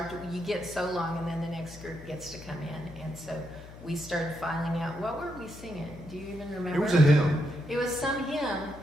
you get so long, and then the next group gets to come in, and so we started filing out, what were we singing? Do you even remember? it was a hymn. It was some hymn,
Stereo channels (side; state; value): left; noise; hum, 16 dB below the sound